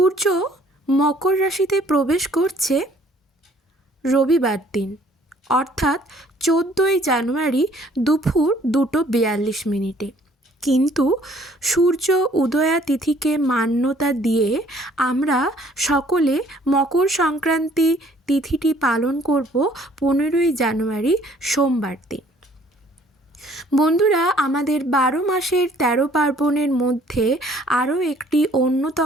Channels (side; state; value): both; normal; correlation 0.59